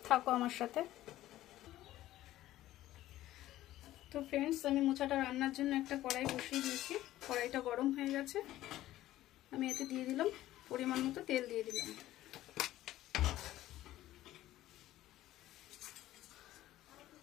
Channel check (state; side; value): quieter; right; 14.7 dB